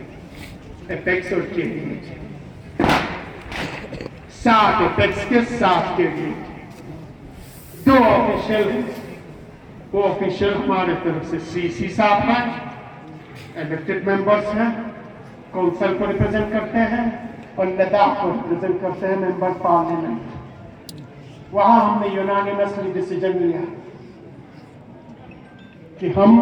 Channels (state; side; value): identical; both; correlation 1.00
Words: एपेक्स और केडीए के, 7 एपेक्स के, 7 केडीए के। 2 ऑफिशियल, वो ऑफिशियल हमारे तरफ से सीसी साहब हैं, इलेक्टेड मेंबर्स हैं, काउंसिल को रिप्रेजेंट करते हैं, और लद्दाख को रिप्रेजेंट करते हैं मेंबर पार्लियामेंट। वहां हमने यूनानिमसली डिसीजन लिया कि हम